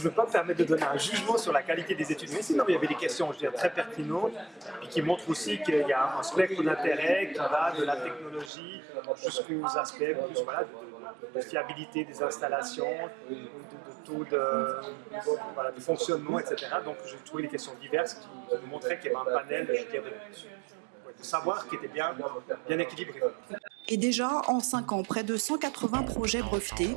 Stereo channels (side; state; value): left; drops out; at 8.5 s